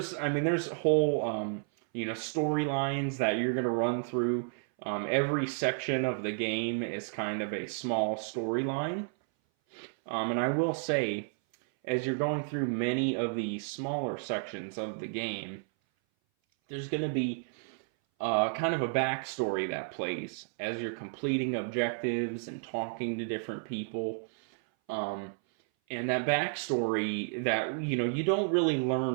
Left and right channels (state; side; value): silent; left; 57 dB below the other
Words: whole storylines that you're gonna run through. Every section of the game is kind of a small storyline, and I will say, as you're going through many of the smaller sections of the game, there's gonna be kind of a backstory that plays as you're completing objectives and talking to different people. And that backstory that, you don't really